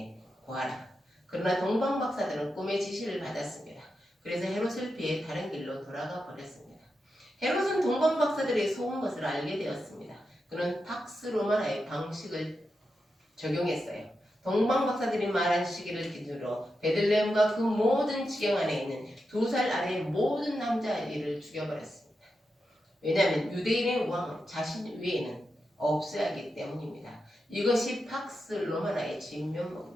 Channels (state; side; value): normal; both; correlation 0.88